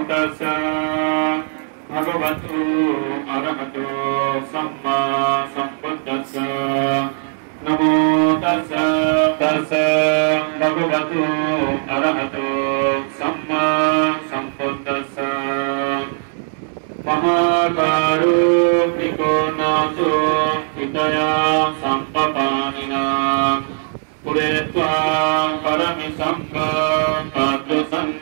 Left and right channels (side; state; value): left; silent; digital silence